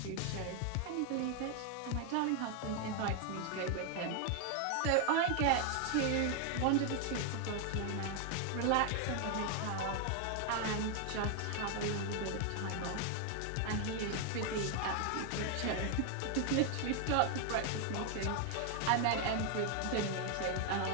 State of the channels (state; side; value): different; both; correlation 0.00